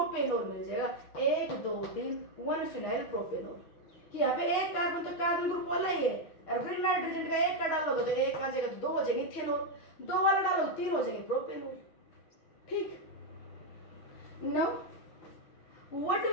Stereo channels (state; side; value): late; right; 6.2 ms